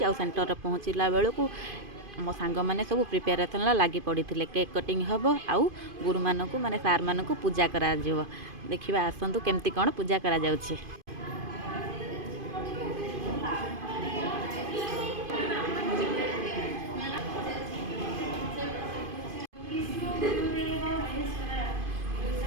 सेन्टर में पहुँचला बेलू मो सांग मैंने सब प्रिपेरेसन लगी पड़ी थे। केक कटिंग हम आउ गुरु मानक माने सार मानक पूजा करा देखा आसतु केमती कौन पूजा करा जाउछे।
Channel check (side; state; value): left; late; 2.5 ms